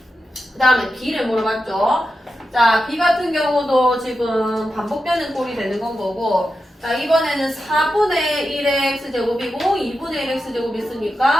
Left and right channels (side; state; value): both; normal; correlation 0.90